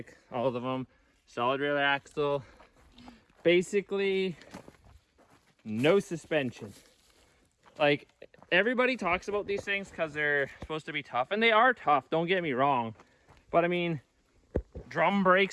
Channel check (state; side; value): identical; both; correlation 1.00